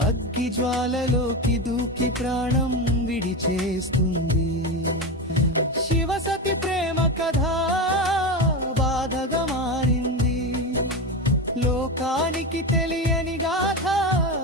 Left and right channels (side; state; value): both; normal; correlation 0.19